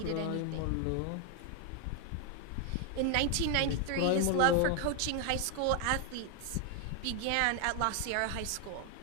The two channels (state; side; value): different; both; correlation 0.01